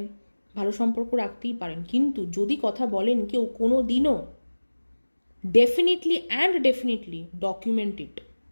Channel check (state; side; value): inverted; both; correlation -1.00